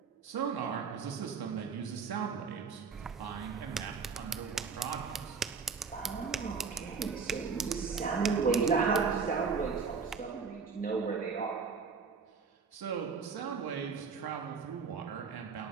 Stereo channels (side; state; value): left; quieter; 5.4 dB